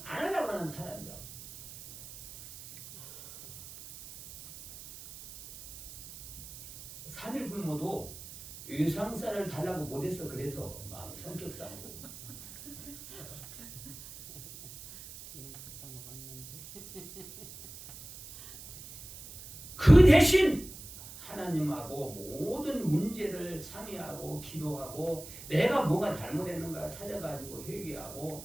안 하려고 하는 사람이야. 삼일 굶어도 외상쌀을 달라고 못해서 그래서 마음 성격상으로. 지금 갖다 먹었는데. 그 대신 하나님하고 모든 문제를 상의하고 기도하고 내가 뭐가 잘못했는가 찾아가지고 회개하고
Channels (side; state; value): right; noise; hiss, 14 dB below the sound